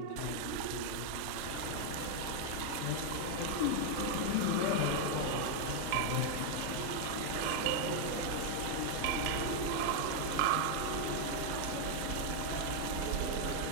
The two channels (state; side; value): different; both; correlation 0.00